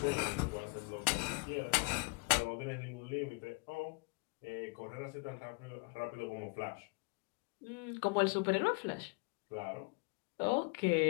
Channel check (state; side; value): quieter; right; 27.8 dB